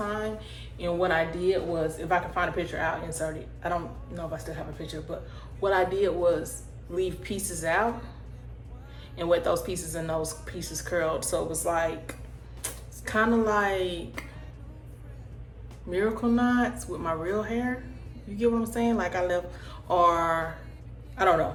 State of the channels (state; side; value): identical; both; correlation 1.00